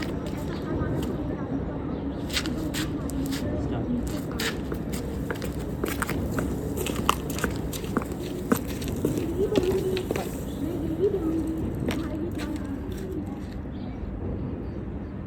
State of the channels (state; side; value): identical; both; correlation 1.00